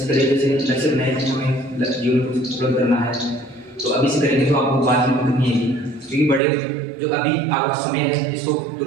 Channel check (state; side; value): drops out; left; at 6.4 s